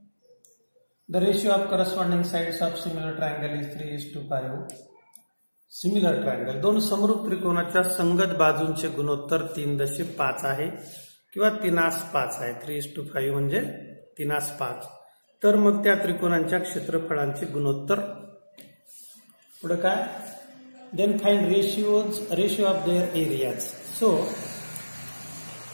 the ratio of corresponding sides of similar triangle is 3:5. Similar triangle, दोन समरूप त्रिकोणाच्या संगत बाजूंचे गुणोत्तर 3.5 आहे किंवा 3:5 आहे. 3:5 म्हणजे 3:5. तर मग त्या त्रिकोणांच्या क्षेत्रफळांचे गुणोत्तर. पुढे काय? Then find ratio of their areas. So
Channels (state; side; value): inverted; both; correlation -1.00